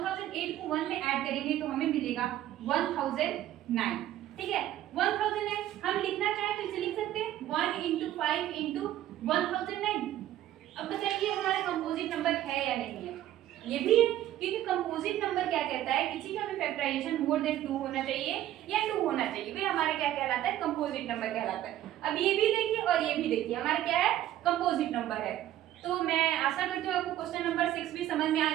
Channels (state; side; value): quieter; left; 13.1 dB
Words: को 1 में ऐड करेंगे तो हमें मिलेगा 1009। ठीक है, 1009 हम लिखना चाहें तो इसे लिख सकते हैं 1 × 5 × 1009। अब बताइए हमारा कंपोजिट नंबर है या नहीं है? ये भी है, क्योंकि कंपोजिट नंबर क्या कहता है, किसी का भी फैक्टराइजेशन मोर देन 2 होना चाहिए या 2 होना चाहिए, वही हमारा क्या कहलाता है, कंपोजिट नंबर कहलाता है। अब ये भी देखिए और ये भी देखिए, हमारा क्या है, कंपोजिट नंबर है। तो मैं आशा करती हूँ आपको क्वेश्चन नंबर 6 भी समझ में आ